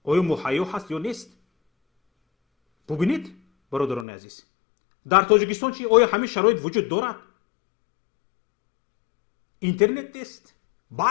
آیا مهیا هست یا نیست ببینید برادران عزیز در تاجیکستان چی آیا همین شرایط وجود دارد اینترنت نیست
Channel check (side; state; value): right; drops out; at 4.0 s